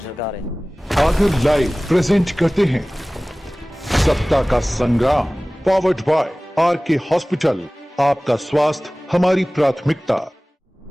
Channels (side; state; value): both; normal; correlation 0.98